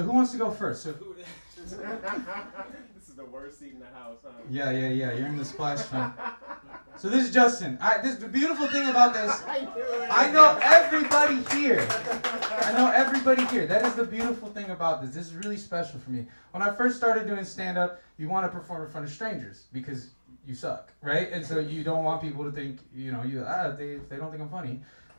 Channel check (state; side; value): inverted; both; correlation -1.00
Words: who wants to go first? So This is the worst seat in the house, huh? yeah. You're in the splash film. So this is Justin. The beautiful thing about this, I know everybody here. That is the beautiful thing about this. This is really special for me. When I first started doing stand-up, you want to perform in front of strangers because you suck, right? And so you don't want people to think, if they don't think I'm funny,